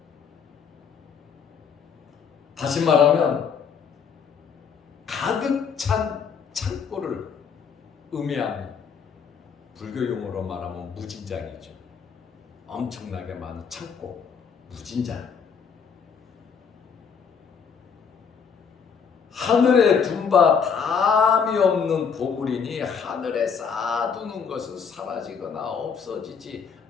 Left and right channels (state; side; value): quieter; right; 6.4 dB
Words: 다시 말하면 가득 찬 창고를 의미합니다. 불교 용어로 말하면 무진장이죠. 엄청나게 많은 창고, 무진장. 하늘에 둔 바 담이 없는 보물이니 하늘에 쌓아두는 것은 사라지거나 없어지지